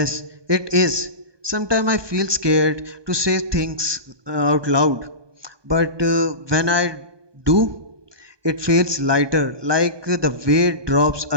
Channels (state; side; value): late; left; 1.2 ms